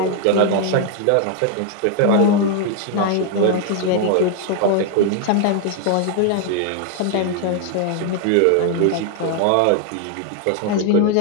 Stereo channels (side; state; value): both; different; correlation 0.00